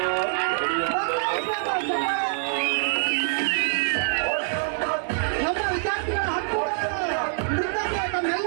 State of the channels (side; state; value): left; silent; digital silence